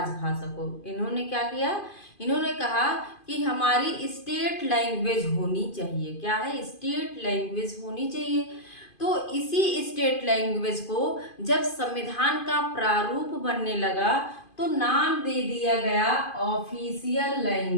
को। इन्होंने क्या किया? इन्होंने कहा कि हमारी स्टेट लैंग्वेज होनी चाहिए। क्या है? स्टेट लैंग्वेज होनी चाहिए। तो इसी स्टेट लैंग्वेज को जब संविधान का प्रारूप बनने लगा तो नाम दे दिया गया ऑफिशियल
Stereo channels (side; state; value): right; late; 2.5 ms